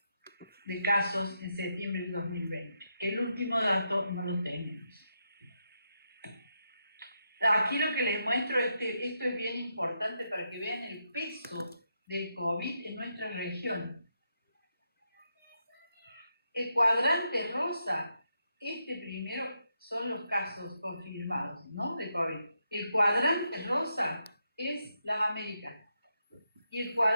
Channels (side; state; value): both; inverted; correlation -0.82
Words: de casos en septiembre del 2020. El último dato no lo tenemos. Aquí lo que les muestro, esto es bien importante para que vean el peso del COVID en nuestra región. El cuadrante rosa, primero son los casos confirmados, ¿no?, de COVID. El cuadrante rosa es las Américas y el